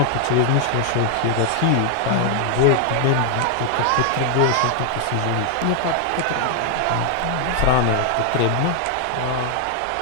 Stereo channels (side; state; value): both; different; correlation 0.00